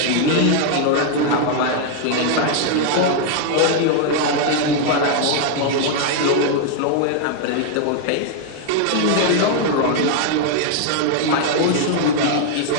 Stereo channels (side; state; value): both; different; correlation 0.00